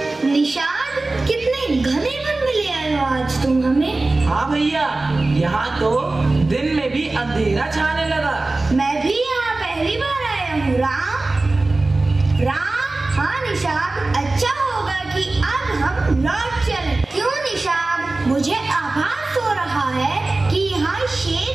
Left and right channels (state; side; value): quieter; left; 3.1 dB